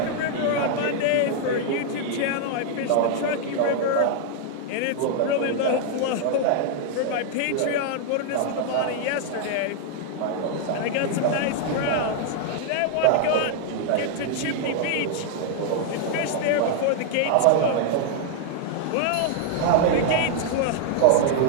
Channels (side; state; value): both; different; correlation 0.00